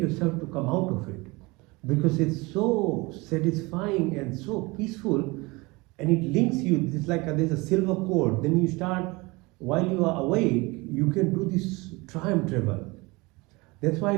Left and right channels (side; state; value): left; quieter; 24.3 dB